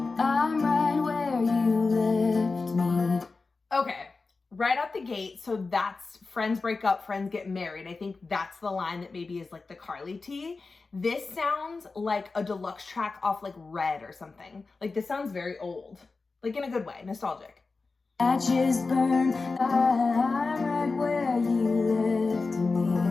I'm right where you left me. Okay. Right out the gate, so that's friends break up, friends get married. I think that's the line that maybe is like the Karlie tea. This sounds like a deluxe track off like Red or something. Like this sounds very old, like in a good way, nostalgic. Ashes burn, I'm right where you left me.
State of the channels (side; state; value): right; quieter; 4.0 dB